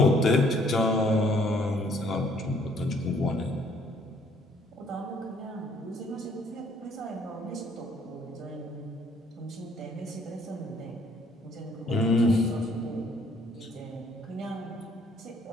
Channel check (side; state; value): both; normal; correlation 0.63